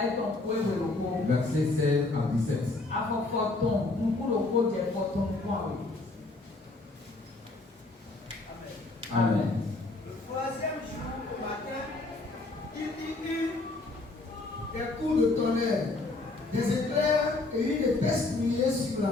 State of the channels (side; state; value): right; quieter; 3.2 dB